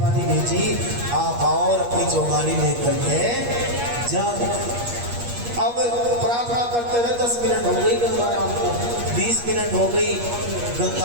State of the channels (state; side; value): late; left; 8.4 ms